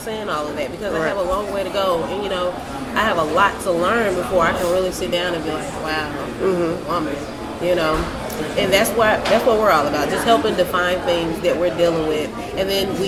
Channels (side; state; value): both; identical; correlation 1.00